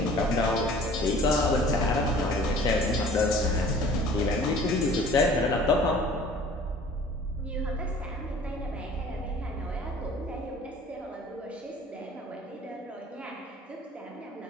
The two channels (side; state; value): both; normal; correlation 0.49